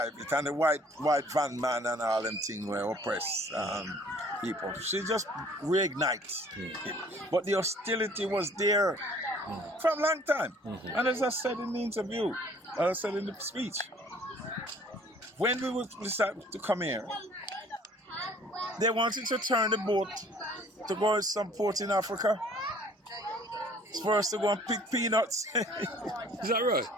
it. And the white van man and all them things were oppressed people. She just reignites it. But the hostility was there for a long time. Mm-hmm. And as I said in the interview, as I said in the speech, when we decided to come here, they wanted to turn the boat to go to some port in Africa. It's for us to go and pick peanuts. Is that right?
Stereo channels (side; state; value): both; normal; correlation 0.54